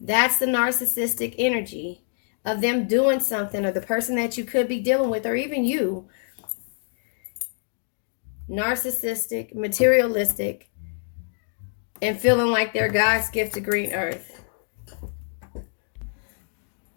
That's the narcissistic energy of them doing something, or the person that you could be dealing with, or even you. Narcissistic, materialistic, and feeling like they're God's gift to green earth.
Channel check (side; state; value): right; silent; digital silence